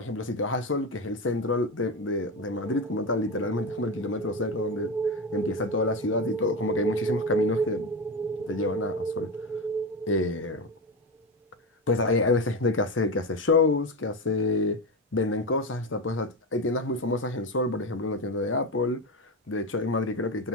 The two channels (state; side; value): normal; both; correlation 0.17